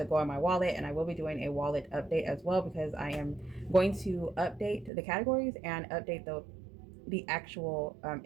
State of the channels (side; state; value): left; drops out; at 4.9 s